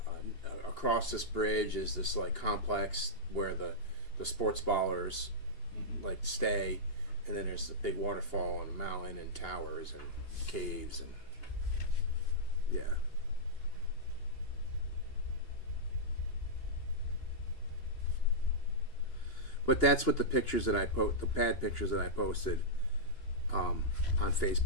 across this bridge is this like complex where the sports ballers like stay, and then there's a big waterfall and a mountain and towers and caves and yeah. But that's what the pictures that the pad pictures that I posted on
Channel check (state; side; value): late; right; 2.8 ms